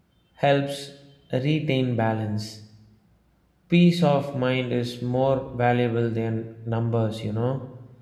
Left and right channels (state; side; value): identical; both; correlation 1.00